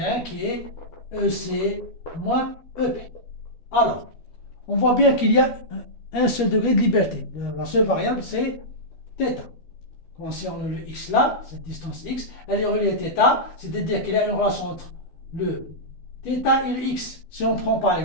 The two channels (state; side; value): late; right; 13 ms